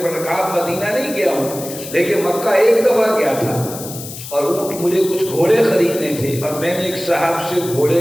پڑھ رہا؟ کہا مدینہ نہیں گیا ہوں لیکن مکہ ایک دفعہ گیا تھا، اور اونٹ مجھے کچھ گھوڑے خریدنے تھے اور میں نے ایک صاحب سے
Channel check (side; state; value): left; noise; hiss, 11 dB below the sound